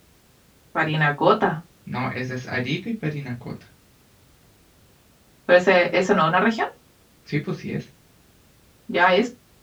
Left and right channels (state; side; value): identical; both; correlation 1.00